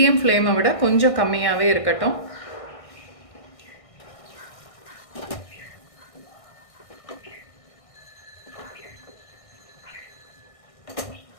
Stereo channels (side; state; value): right; late; 1.6 ms